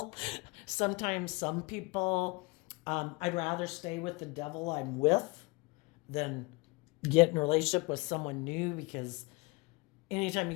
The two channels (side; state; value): right; quieter; 26.3 dB